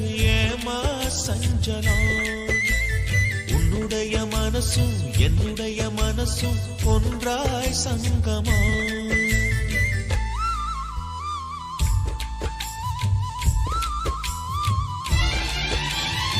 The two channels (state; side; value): identical; both; correlation 1.00